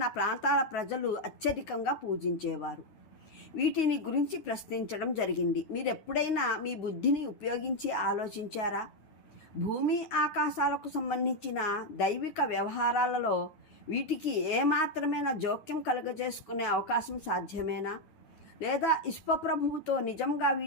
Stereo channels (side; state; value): right; late; 9.7 ms